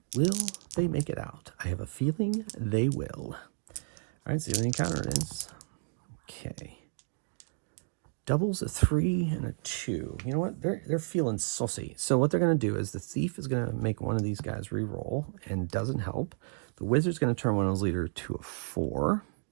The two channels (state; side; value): silent; left; digital silence